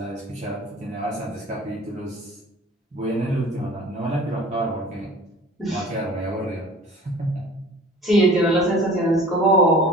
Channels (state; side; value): normal; both; correlation 0.44